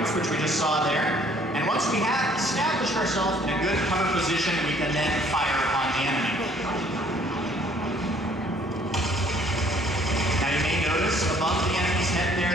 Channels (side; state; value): both; normal; correlation 0.60